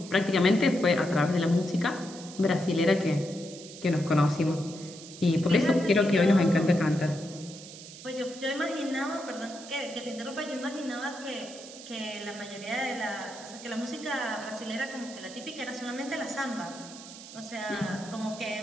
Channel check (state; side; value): noise; right; hiss, 15 dB below the sound